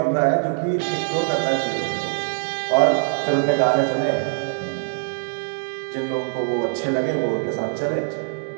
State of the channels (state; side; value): silent; left; 64 dB below the other